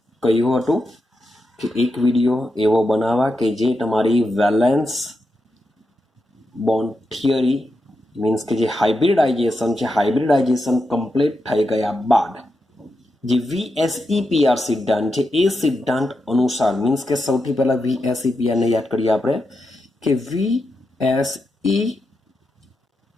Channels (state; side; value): normal; both; correlation 0.87